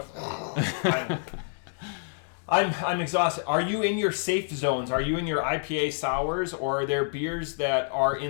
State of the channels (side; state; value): right; silent; digital silence